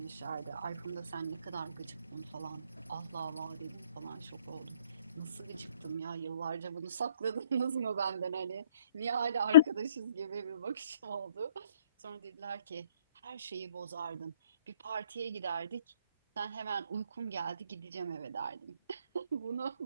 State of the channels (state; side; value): inverted; both; correlation -0.61